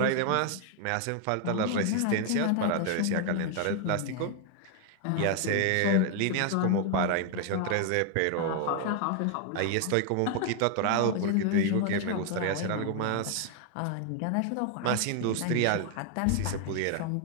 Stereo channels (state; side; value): different; both; correlation 0.00